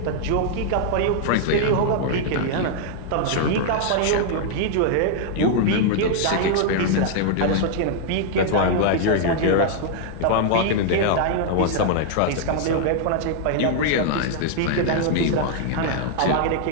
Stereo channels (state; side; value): different; both; correlation 0.00